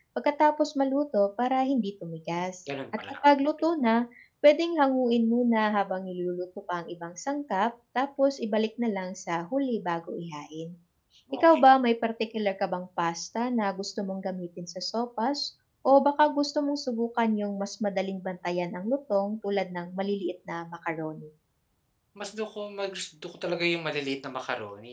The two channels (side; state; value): both; identical; correlation 1.00